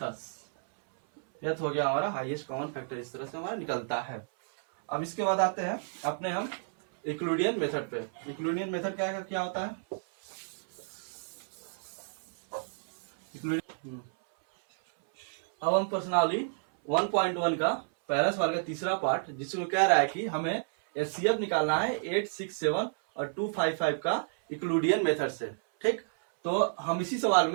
10। यह हो गया हमारा हाईएस्ट कॉमन फैक्टर। इस तरह से हमारा निकलता है। अब इसके बाद आते हैं अपने हम यूक्लिडियन मेथड पे। यूक्लिडियन मेथड क्या होता है, अब हम पर्सनली 1.1 का पहला सवाल का तीसरा पार्ट, जिसमें कह रहा है कि हमें HCF निकालना है 867 और 255 का यूक्लिडियन मेथड से। ठीक, तो हम इसी सवाल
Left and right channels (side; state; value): left; silent; 57 dB below the other